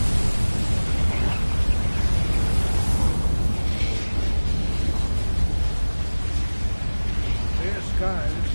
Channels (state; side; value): inverted; both; correlation -1.00